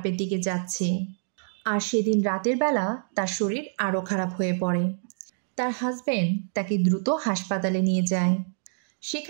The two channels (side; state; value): left; silent; digital silence